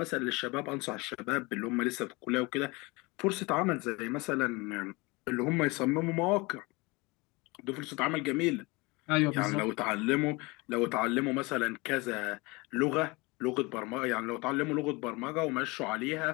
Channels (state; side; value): quieter; right; 25.2 dB